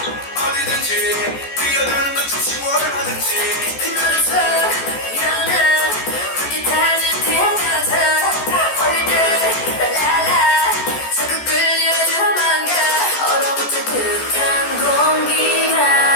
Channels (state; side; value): late; right; 14 ms